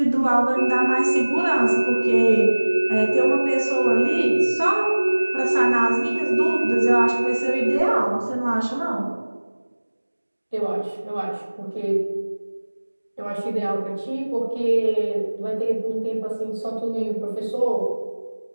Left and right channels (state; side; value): inverted; both; correlation -1.00